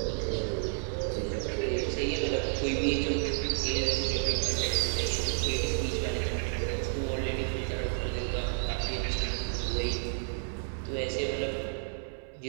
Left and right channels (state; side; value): silent; left; 57 dB below the other